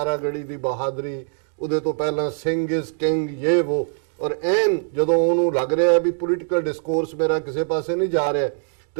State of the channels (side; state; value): left; silent; 64 dB below the other